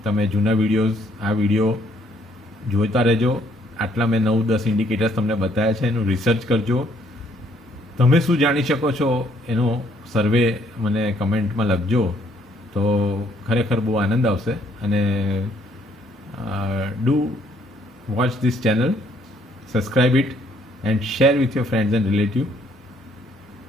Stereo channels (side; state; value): both; normal; correlation 0.66